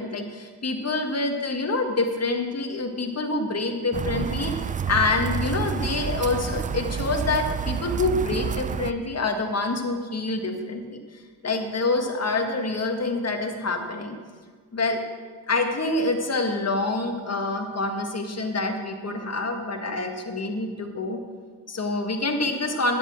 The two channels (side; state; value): both; normal; correlation 0.03